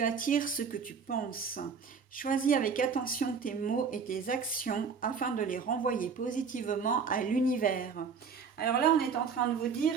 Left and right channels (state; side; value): quieter; left; 5.9 dB